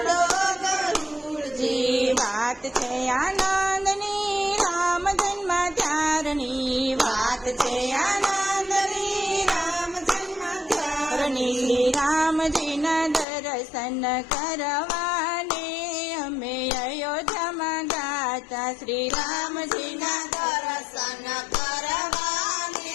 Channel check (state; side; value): drops out; right; at 13.2 s